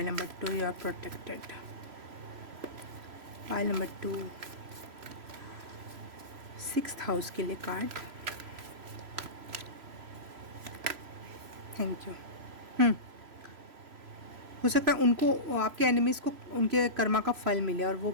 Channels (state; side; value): late; left; 3.0 ms